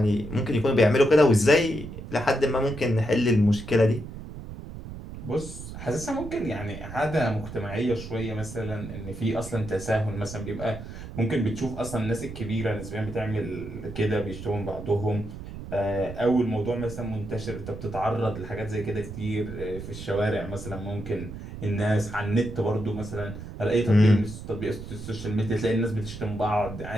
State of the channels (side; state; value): right; noise; rumble, 11 dB below the sound